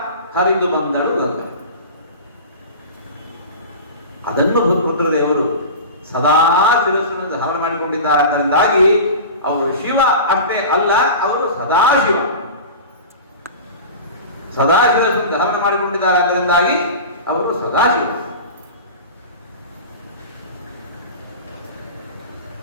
ಹರಿದು ಬಂದಳು ಗಂಗಾ. ಅದನ್ನು ರುದ್ರದೇವರು ಸದಾ ಶಿರಸ್ಸನ್ನು ಧಾರಣ ಮಾಡಿಕೊಂಡಿದ್ದಾರೆ. ಅದರಿಂದಾಗಿ ಅವರು ಶಿವ ಅಷ್ಟೇ ಅಲ್ಲ, ಅವರು ಸದಾಶಿವ. ಸದಾಶಿವವನ್ನು ಧಾರಣ ಮಾಡಿಕೊಂಡಿದ್ದಾರೆ. ಅದರಿಂದಾಗಿ ಅವರು ಸದಾಶಿವ.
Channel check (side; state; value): both; inverted; correlation -0.33